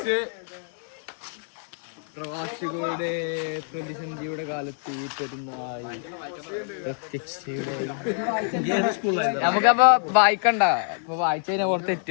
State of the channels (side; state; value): right; silent; 58 dB below the other